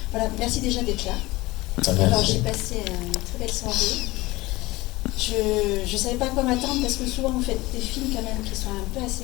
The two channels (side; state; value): right; quieter; 20.3 dB